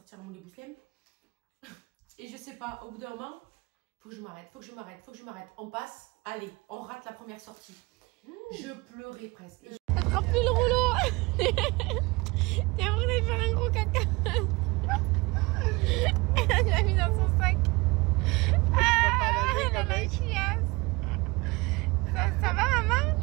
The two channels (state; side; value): quieter; left; 24.4 dB